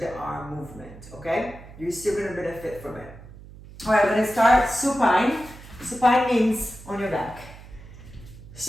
arm movement, okay? You're still gonna benefit from it. All right, we're gonna start supine. Supine means on your back.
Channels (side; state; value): right; noise; hum, 18 dB below the sound